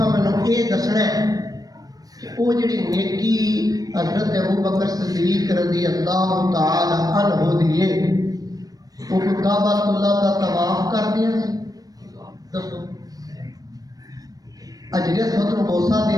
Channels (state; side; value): late; left; 0.18 ms